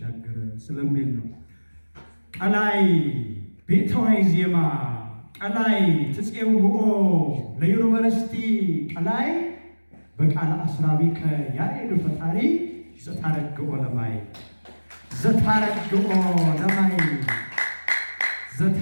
ስለሚል ነው። ቀላይ ቤተዋይ ዜማ ቀላይ ትጼውኦ ለዩኒቨርሲቲ ቀላይ በቃለ አስራቢከ ያሬድ ፈጣሪ ዘታረግኦ ለማይ ዘታረግኦ ለማይ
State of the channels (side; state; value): both; inverted; correlation -1.00